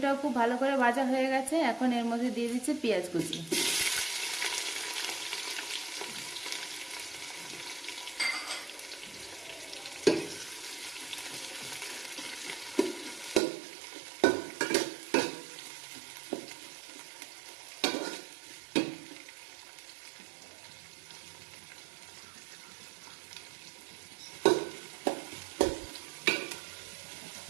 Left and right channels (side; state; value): left; drops out; at 13.4 s